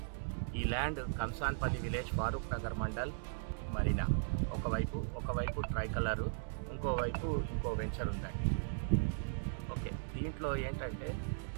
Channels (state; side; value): silent; left; digital silence